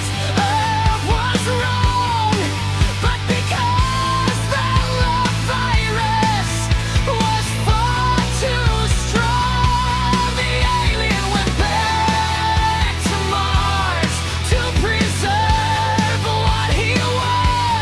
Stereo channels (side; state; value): both; identical; correlation 1.00